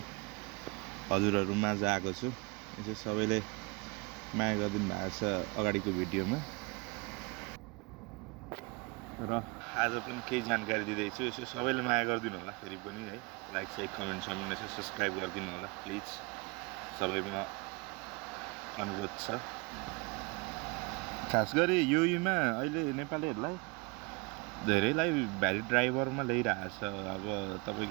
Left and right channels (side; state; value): left; quieter; 28.7 dB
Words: हजुरहरू माझ आएको छु। यसो सबैले माया गरिदिनु भएको छ अगाडिको भिडियोमा र आज पनि केही जानकारी दिँदैछु। यसो सबैले माया गरिदिनु होला फेरि पनि है। लाइक साइक कमेन्ट यसो सब्सक्राइब गरिदिनु होला प्लिज, सबैमा अनुरोध छ। खास गरी युईमा अहिले नेपालीहरूलाई धेरैलाई भ्यालिड ड्राइभरमा ल्याइरहेको छ। अब